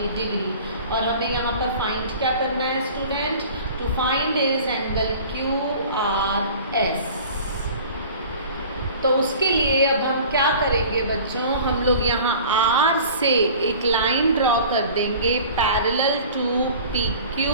degree। और हमें यहाँ पर फाइंड क्या करना है student, to find is angle QRS। तो उसके लिए अब हम क्या करेंगे बच्चों, हम लोग यहाँ R से एक लाइन ड्रॉ कर देंगे parallel to PQ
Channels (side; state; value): both; inverted; correlation -0.44